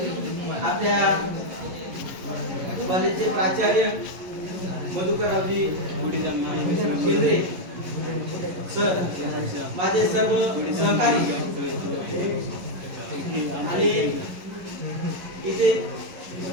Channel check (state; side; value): late; left; 11 ms